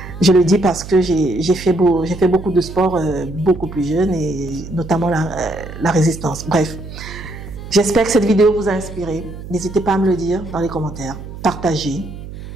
Je le dis parce que j'ai fait beaucoup de sport beaucoup plus jeune et notamment la résistance. Bref. J'espère que cette vidéo vous a inspiré. N'hésitez pas à me le dire dans les commentaires. Partagez.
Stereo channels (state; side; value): noise; right; hum, 12 dB below the sound